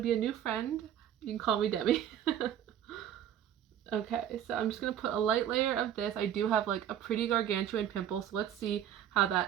be a new friend, you can call me Demi. Okay, so I'm just going to put a light layer of this. I do have like a pretty gargantuan pimple, so let's see how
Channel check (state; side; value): quieter; left; 10.3 dB